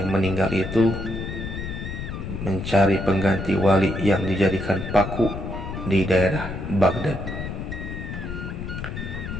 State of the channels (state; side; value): noise; left; rumble, 6 dB below the sound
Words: meninggal itu, mencari pengganti wali yang dijadikan paku di daerah Baghdad.